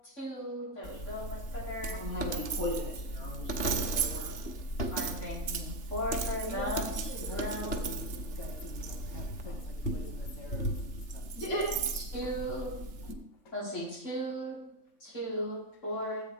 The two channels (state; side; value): late; right; 3.5 ms